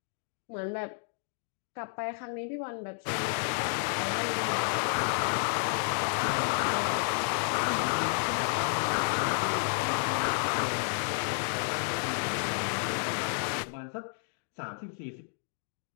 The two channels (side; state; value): right; silent; digital silence